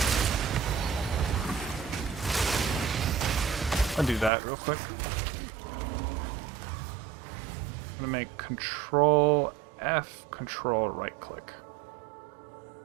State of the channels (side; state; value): left; drops out; at 4.3 s